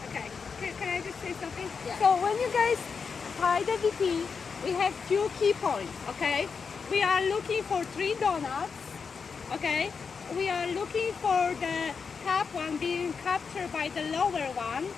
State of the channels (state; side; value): quieter; right; 5.6 dB